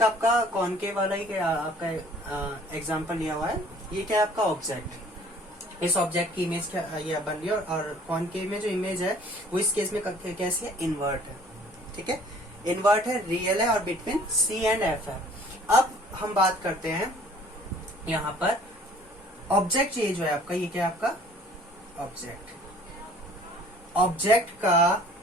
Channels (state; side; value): normal; both; correlation 0.53